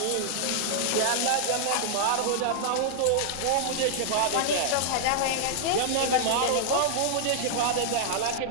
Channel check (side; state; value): both; different; correlation -0.01